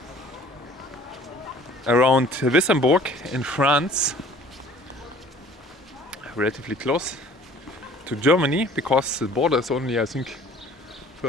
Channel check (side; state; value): both; normal; correlation 0.51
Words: around Wissembourg in France, relatively close to Germany, because the border is only, I think,